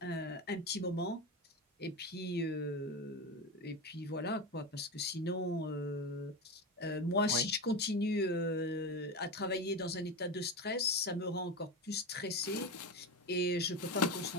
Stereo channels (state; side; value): normal; both; correlation 0.20